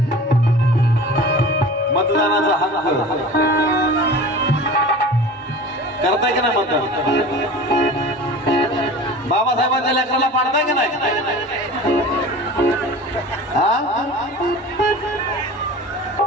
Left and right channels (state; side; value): normal; both; correlation 0.38